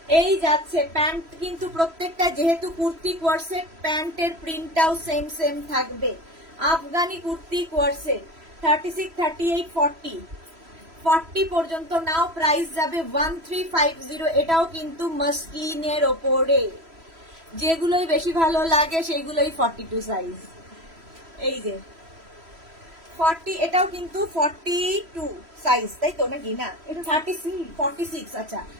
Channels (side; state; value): left; late; 3.0 ms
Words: এই যাচ্ছে প্যান্ট কিন্তু প্রত্যেকটা, যেহেতু কুর্তি কোয়ারসেট, প্যান্টের প্রিন্টটাও সেম সেম থাকবে। আফগানি কুর্তি কোয়ারসেট 36, 38, 40 40 পর্যন্ত নাও, প্রাইস যাবে 1350। এটাও কিন্তু মাসলিনের ওপরে, যেগুলোই বেশি ভালো লাগে সেগুলোই 42 সাইজ। এই যে 40, এটাও কিন্তু 42 সাইজ, তাই তো নাকি? না, এটা 46, আচ্ছা